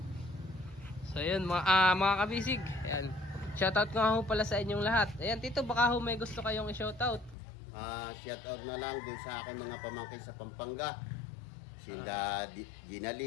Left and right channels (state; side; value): drops out; right; at 7.4 s